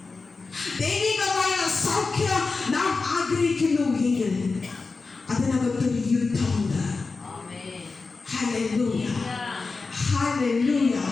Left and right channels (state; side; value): quieter; right; 4.1 dB